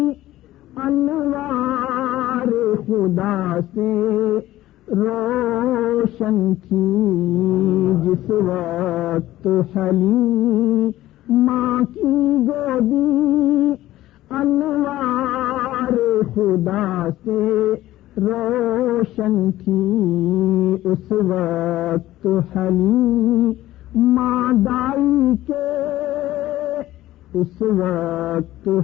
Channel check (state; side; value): quieter; right; 15.2 dB